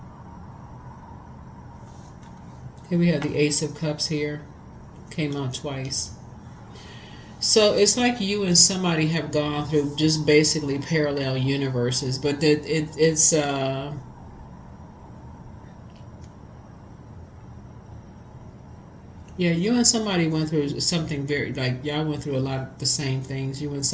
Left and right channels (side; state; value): both; identical; correlation 1.00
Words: Here we have the Ace of Cups here. Came out twice. So it's like you and somebody have gone through just basically parallel universes, but it's yeah, you and somebody went through something very, like, y'all went through a lot of the same things. You and